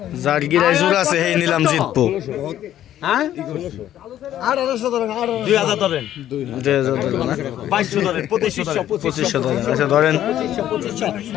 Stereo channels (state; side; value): quieter; right; 11.9 dB